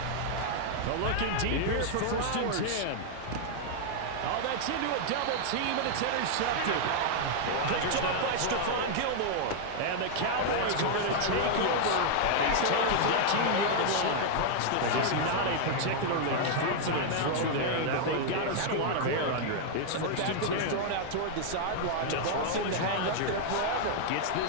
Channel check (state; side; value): different; both; correlation -0.01